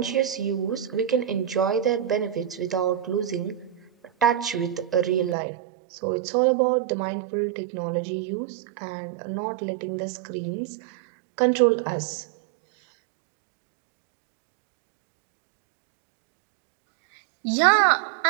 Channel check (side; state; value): left; drops out; at 5.4 s